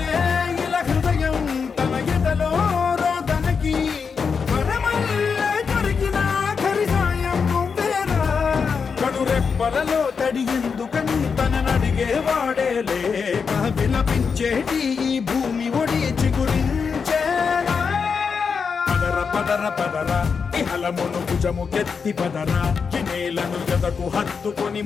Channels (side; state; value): right; quieter; 5.7 dB